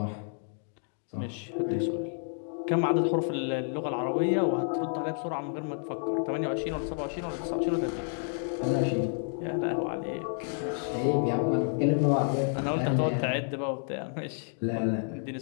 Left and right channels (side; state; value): right; silent; 58 dB below the other